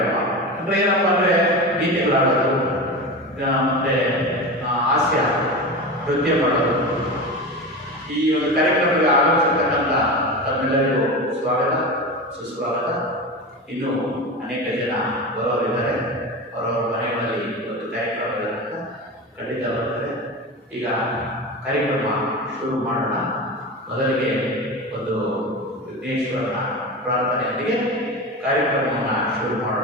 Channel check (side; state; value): both; normal; correlation 0.25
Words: ಅಂದರೆ ಏನಪ್ಪ ಅಂದರೆ ಗೀತೆಗಳಾಡೋದು ಮತ್ತು ಹಾಸ್ಯ ನೃತ್ಯ ಮಾಡೋದು. ಈ ಒಂದು ಕಾರ್ಯಕ್ರಮಕ್ಕೆ ಆಗಮಿಸಿರ್ತಕ್ಕಂಥ ತಮ್ಮೆಲ್ಲರಿಗೂ ಸ್ವಾಗತ, ಸುಸ್ವಾಗತ. ಇನ್ನೂ ಅನೇಕ ಜನ ಬರೋರಿದ್ದಾರೆ, ಅವರವರ ಮನೆಗಳಲ್ಲಿ ಒಂದು ಕಾರ್ಯಕ್ರಮ ಇರೋದ್ರಿಂದ ಖಂಡಿತ ಬರ್ತಾರೆ. ಈಗ ಕಾರ್ಯಕ್ರಮ ಶುರು ಮಾಡೋಣ. ಮೊದಲಿಗೆ ಒಂದು ವಿಘ್ನೇಶ್ವರನ ಪ್ರಾರ್ಥನೆಯೊಂದಿಗೆ ಕಾರ್ಯಕ್ರಮವನ್ನು ಶುರು ಮಾಡೋಣ.